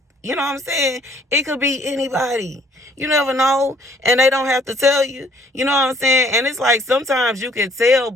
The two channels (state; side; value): normal; both; correlation 0.61